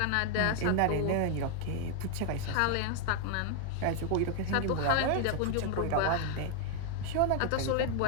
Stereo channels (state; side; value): different; both; correlation 0.00